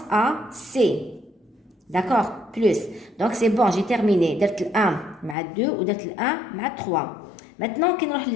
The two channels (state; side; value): drops out; right; at 5.4 s